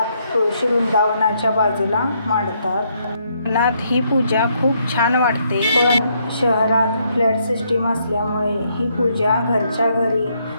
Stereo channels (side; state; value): both; inverted; correlation -0.74